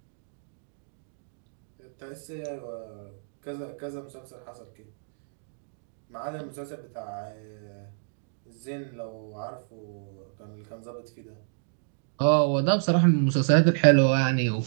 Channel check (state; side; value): silent; left; digital silence